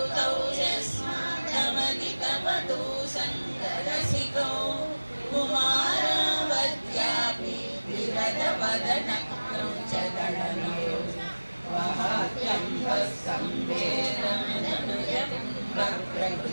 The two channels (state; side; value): inverted; both; correlation -1.00